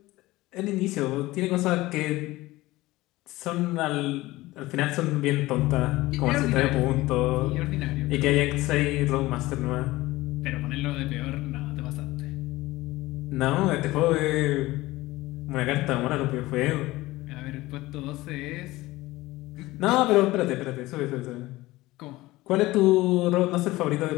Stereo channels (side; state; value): right; quieter; 18.7 dB